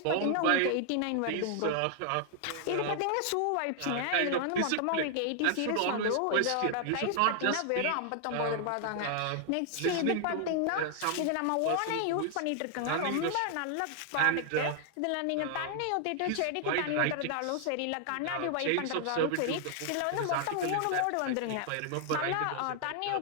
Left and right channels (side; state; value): both; different; correlation 0.00